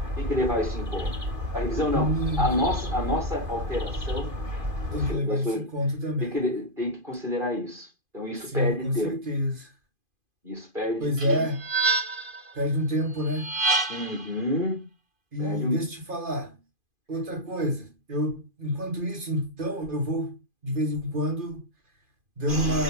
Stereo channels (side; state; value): left; late; 2.5 ms